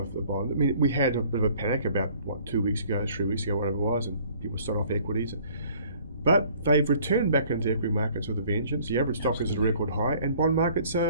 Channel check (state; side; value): inverted; both; correlation -0.56